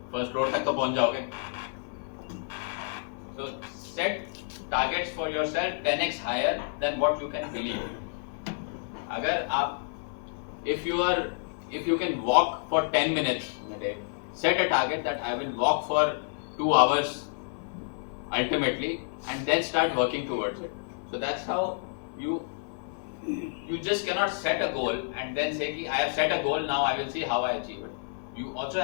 first floor तक तो पहुंच जाओगे. So set targets for yourself 10x higher than what you can believe. अगर आप if you can walk for 10 minutes in a day, set a target that I will walk for 2 hours ultimately, and then start working towards it. So that's how you just cannot set a goal and then say I have set a goal, now I will see how I achieve it. You also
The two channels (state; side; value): silent; right; 58 dB below the other